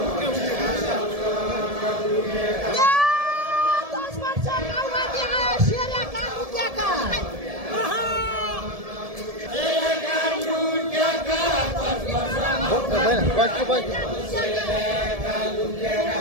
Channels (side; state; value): left; late; 1.7 ms